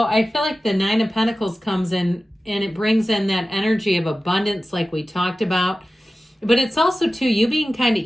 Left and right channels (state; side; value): normal; both; correlation 0.95